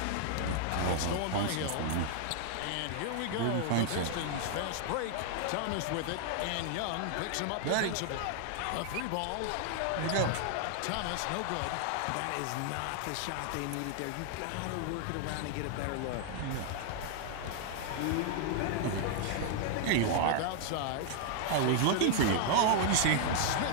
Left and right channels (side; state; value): both; different; correlation 0.00